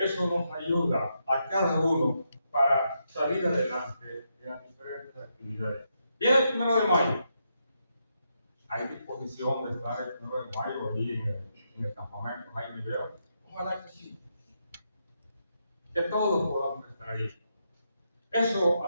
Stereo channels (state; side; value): inverted; both; correlation -0.81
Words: nos ayuda a cada uno para salir adelante en las diferentes actividades. Viene el 1 de mayo. Hay disposición de estar el 1 de mayo allí en el campamento Jaime Vera. Ojalá que sí. Que todos podamos estar ahí. Eso,